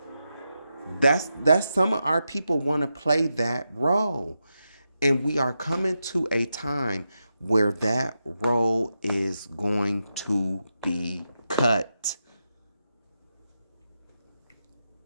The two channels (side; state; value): both; inverted; correlation -0.87